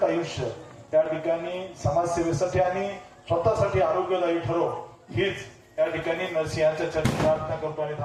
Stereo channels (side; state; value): both; identical; correlation 1.00